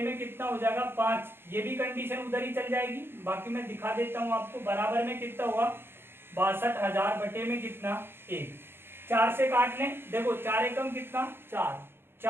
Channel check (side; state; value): left; late; 0.11 ms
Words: में कितना हो जाएगा 5, ये भी कंडीशन उधर ही चल जाएगी। बाकी मैं दिखा देता हूँ आपको, बराबर में कितना होगा 62,000 बटे में कितना 1, 4 से काट लें, देखो 4 एकम कितना 4,